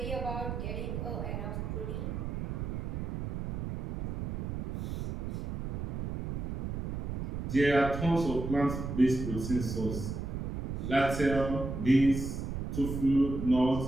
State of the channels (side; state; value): right; noise; rumble, 4 dB below the sound